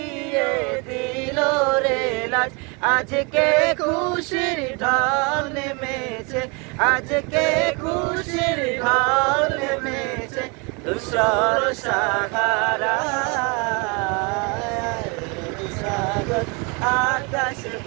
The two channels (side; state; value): left; quieter; 31.1 dB